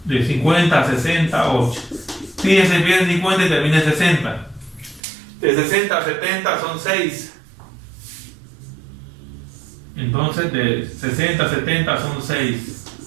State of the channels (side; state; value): left; drops out; at 5.0 s